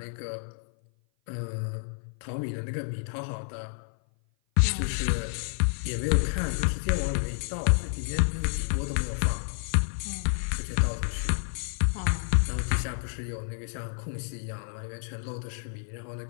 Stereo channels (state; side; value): silent; right; 55 dB below the other